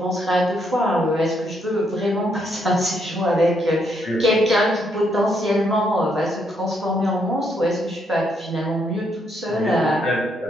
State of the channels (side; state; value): both; normal; correlation 0.75